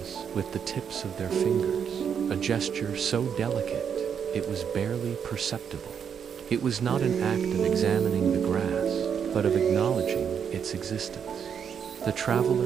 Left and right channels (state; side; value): quieter; left; 7.6 dB